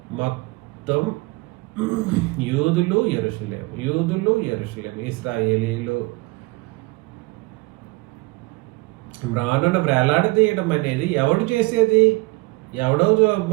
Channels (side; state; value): left; quieter; 23.9 dB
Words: మొత్తం యూదులు యెరూషలేము ఇశ్రాయేలీలు. మ్రానును వేలాడదీయడం అనేది ఎవడు చేసేది? ఎవడో